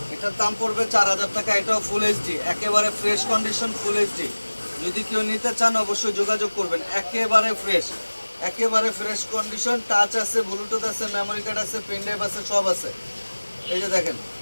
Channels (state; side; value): inverted; both; correlation -1.00